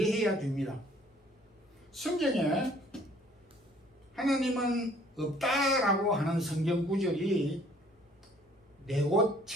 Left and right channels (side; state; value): both; normal; correlation 0.58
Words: 됩니다. 성경에 하나님은 없다라고 하는 성경 구절이